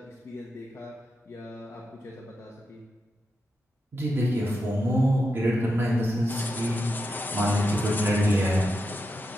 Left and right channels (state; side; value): normal; both; correlation 0.87